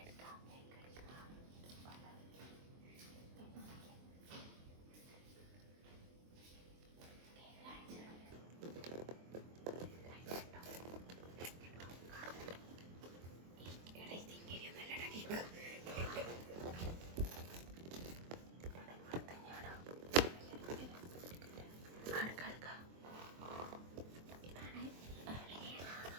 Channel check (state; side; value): late; left; 23 ms